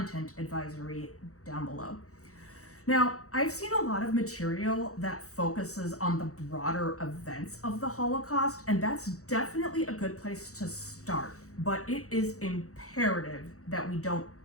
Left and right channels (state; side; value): late; right; 0.65 ms